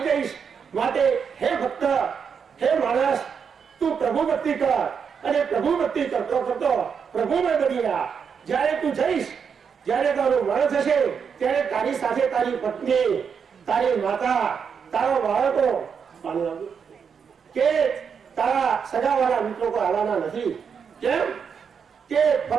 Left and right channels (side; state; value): left; quieter; 6.6 dB